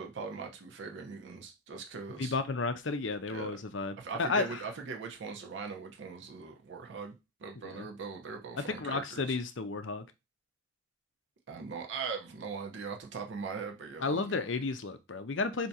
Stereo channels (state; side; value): normal; both; correlation 0.04